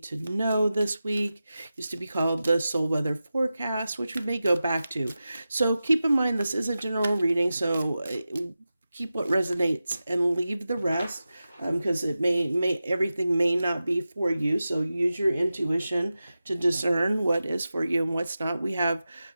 to know this week? Used to be called the Soul Weather Forecast, which we may go back to. So keep in mind this is a general reading, so keep what resonates and leave the rest, because it may everything may not be for you. So use your intuition to discern what is for you and what's not. We have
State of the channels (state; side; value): inverted; both; correlation -0.93